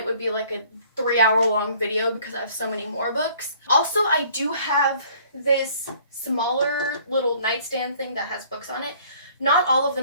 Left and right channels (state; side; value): inverted; both; correlation -0.56